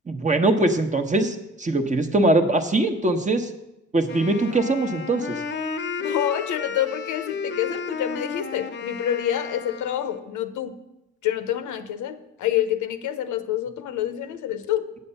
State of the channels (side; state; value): both; normal; correlation 0.36